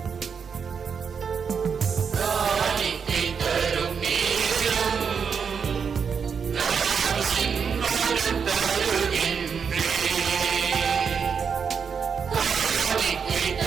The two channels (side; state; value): left; quieter; 6.4 dB